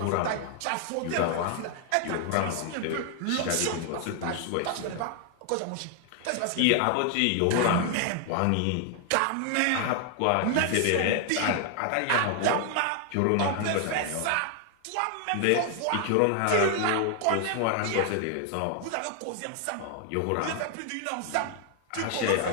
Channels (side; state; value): both; different; correlation 0.00